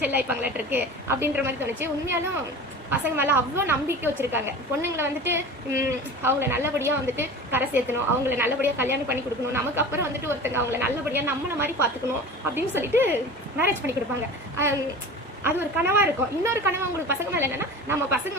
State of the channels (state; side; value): normal; both; correlation 0.35